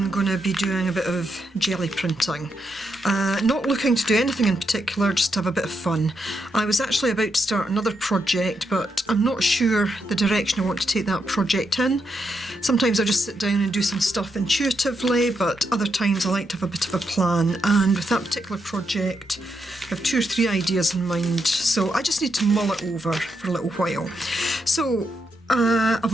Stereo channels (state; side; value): normal; both; correlation 0.82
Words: going to be doing a bit of jelly printing. Not looking to do anything in particular, just to have a bit of fun. I was actually about to start another project, but I'm not sure the direction I want to take that project in. Sometimes I just sit down and do some stuff intuitively, but other times I like to have a bit of a plan, and with that particular project I have 2 or 3 ideas in mind, so I just need to mull it over for a little while. So